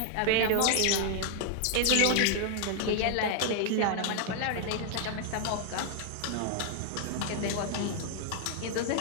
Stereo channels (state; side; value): different; both; correlation 0.00